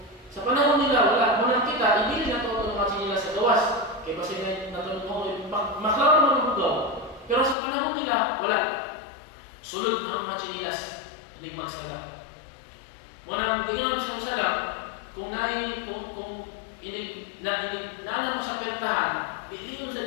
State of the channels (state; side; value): drops out; right; at 7.6 s